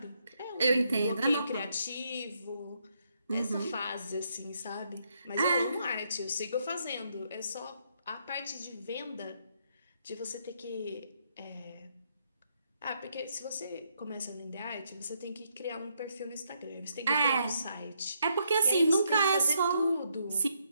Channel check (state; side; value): inverted; both; correlation -0.76